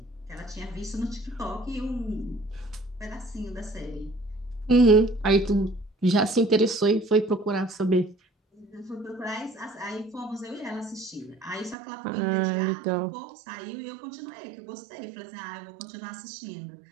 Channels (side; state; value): left; drops out; at 11.8 s